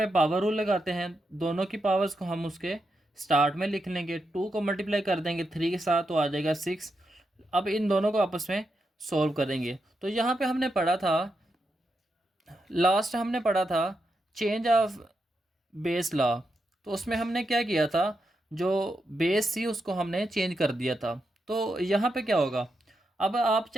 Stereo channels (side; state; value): both; normal; correlation 0.85